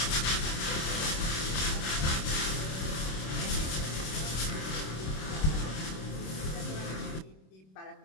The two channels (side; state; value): right; late; 26 ms